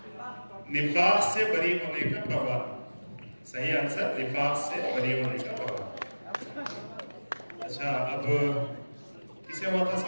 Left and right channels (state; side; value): inverted; both; correlation -1.00